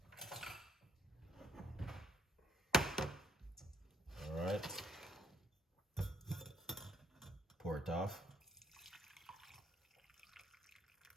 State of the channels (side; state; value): both; normal; correlation 0.70